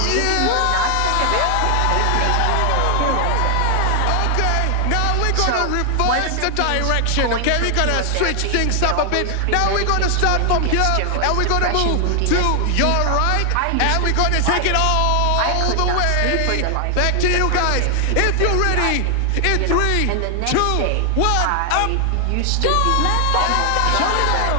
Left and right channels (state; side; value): different; both; correlation 0.00